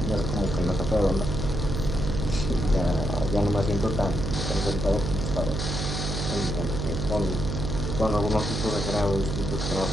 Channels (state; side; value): noise; right; hum, 3 dB below the sound